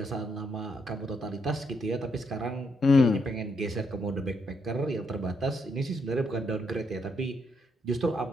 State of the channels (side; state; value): both; normal; correlation 0.76